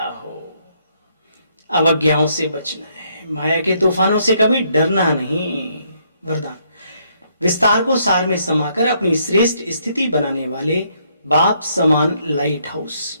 हो। अवज्ञाओं से बचना है, माया के तूफानों से कभी डरना नहीं। वरदान, विस्तार को सार में समाकर अपनी श्रेष्ठ स्थिति बनाने वाले बाप समान लाइट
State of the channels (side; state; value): both; inverted; correlation -0.71